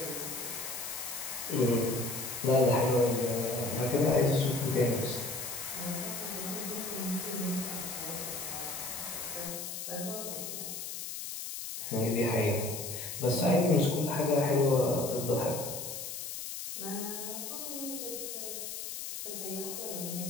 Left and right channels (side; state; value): left; noise; hiss, 6 dB below the sound